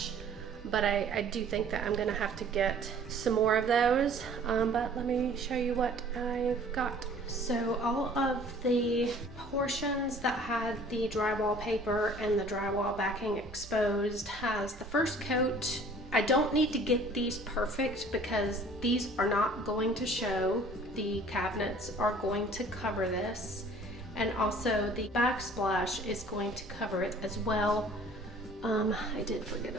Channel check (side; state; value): both; normal; correlation 0.51